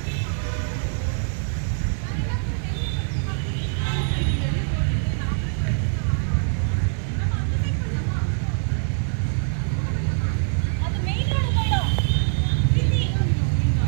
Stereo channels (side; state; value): left; silent; 55 dB below the other